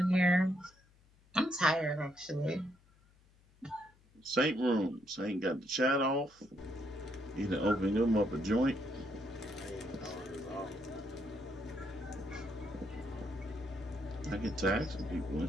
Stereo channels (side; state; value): left; noise; hum, 30 dB below the sound